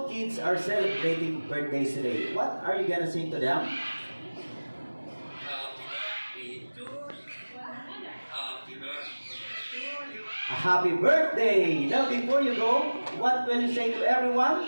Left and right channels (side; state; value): both; inverted; correlation -1.00